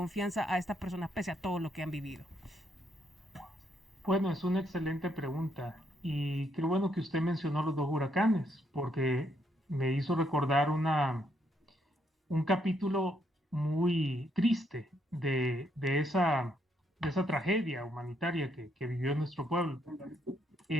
a estas personas pese a todo lo que han vivido? Bueno, es una excelente pregunta y qué bueno que usted mencionó los dos huracanes, porque me hizo recordar un capítulo muy triste de esa tragedia humanitaria que vivió nuestro pueblo.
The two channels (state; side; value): normal; both; correlation 0.74